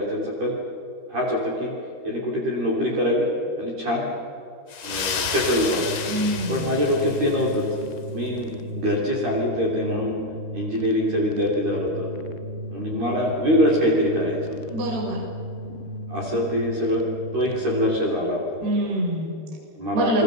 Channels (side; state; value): left; late; 12 ms